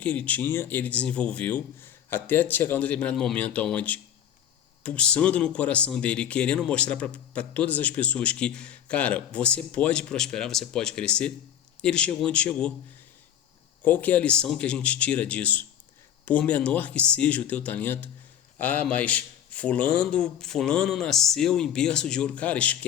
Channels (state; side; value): quieter; right; 10.0 dB